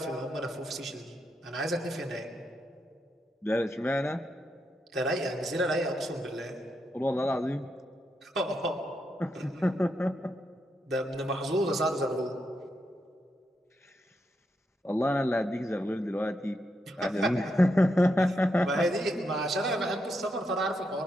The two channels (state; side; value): normal; both; correlation 0.82